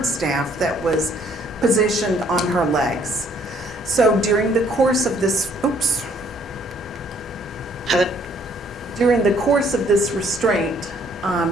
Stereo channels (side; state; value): both; normal; correlation 0.64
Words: staff that was positioned on her legs. So during the course of this, restraint,